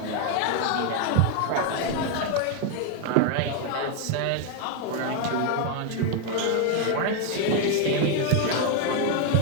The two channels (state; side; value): different; both; correlation 0.01